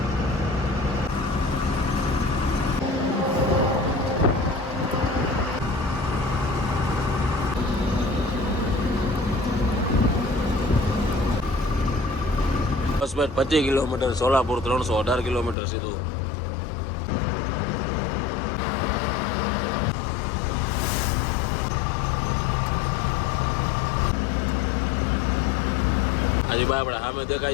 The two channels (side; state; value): right; drops out; at 15.6 s